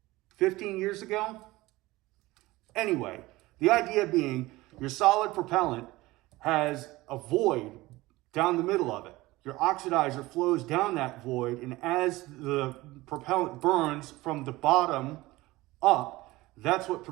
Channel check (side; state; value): left; quieter; 19.4 dB